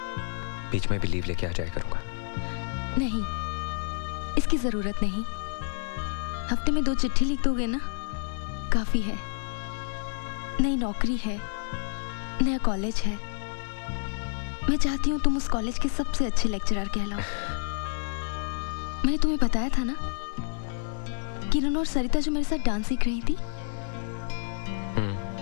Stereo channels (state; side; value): silent; right; digital silence